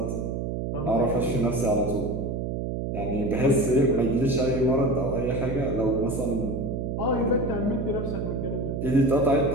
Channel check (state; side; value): noise; right; hum, 2 dB below the sound